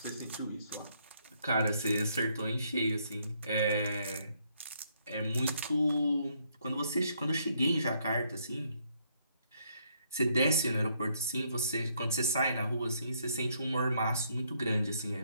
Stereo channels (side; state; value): both; inverted; correlation -0.71